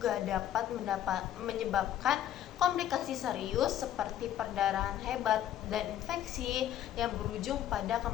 dapat menyebabkan komplikasi serius seperti perdarahan hebat dan infeksi yang berujung pada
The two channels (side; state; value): right; quieter; 11.4 dB